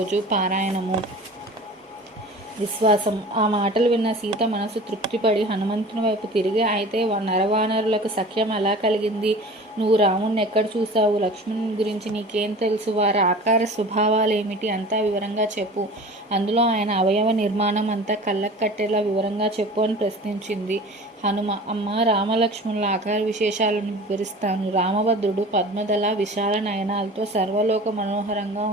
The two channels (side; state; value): both; normal; correlation 0.40